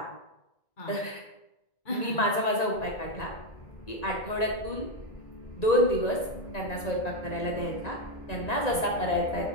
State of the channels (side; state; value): right; late; 1.9 ms